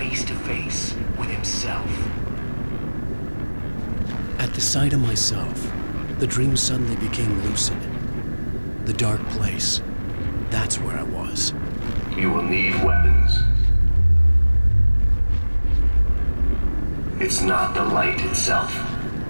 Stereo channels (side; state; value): both; inverted; correlation -1.00